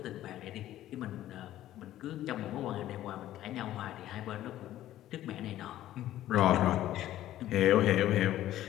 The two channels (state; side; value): quieter; right; 13.4 dB